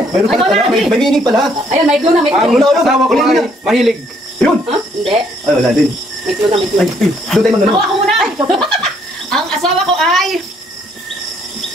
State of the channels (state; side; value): normal; both; correlation 0.67